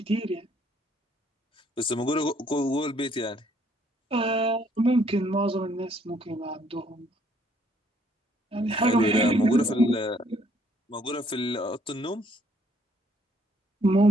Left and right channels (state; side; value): normal; both; correlation 0.66